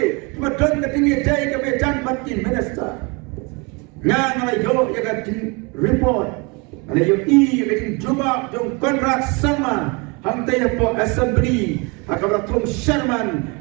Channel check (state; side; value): quieter; left; 29.6 dB